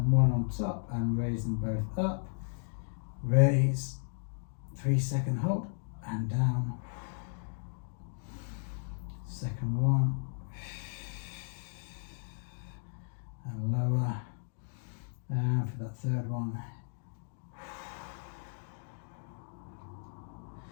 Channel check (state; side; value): silent; right; digital silence